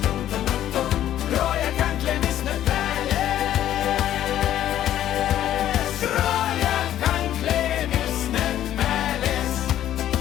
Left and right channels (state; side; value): quieter; right; 11.9 dB